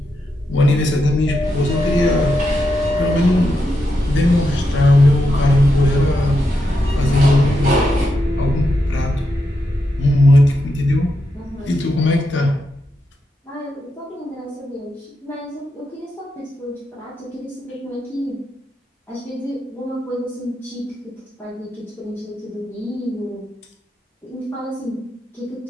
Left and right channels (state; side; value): normal; both; correlation 0.85